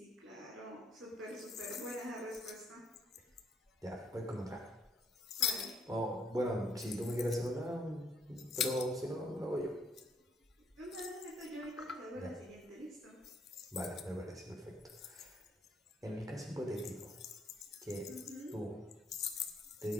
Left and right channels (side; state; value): both; normal; correlation 0.68